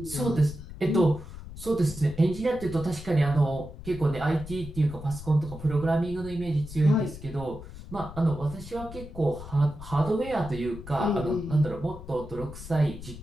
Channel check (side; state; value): left; noise; rumble, 13 dB below the sound